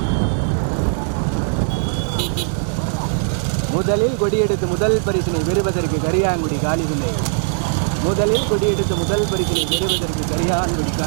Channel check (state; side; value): silent; left; digital silence